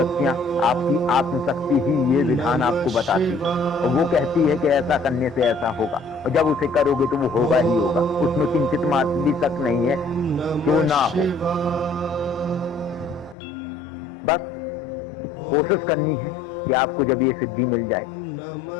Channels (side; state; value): right; drops out; at 13.4 s